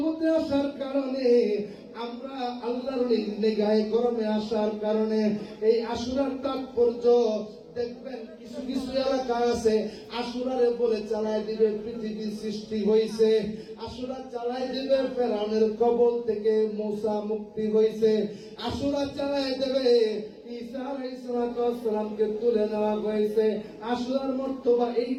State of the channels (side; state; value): both; identical; correlation 1.00